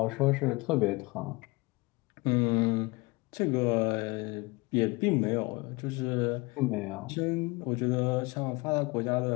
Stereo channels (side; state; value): right; quieter; 25.0 dB